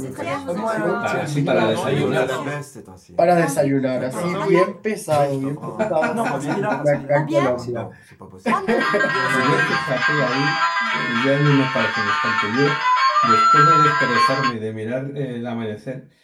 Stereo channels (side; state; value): both; identical; correlation 1.00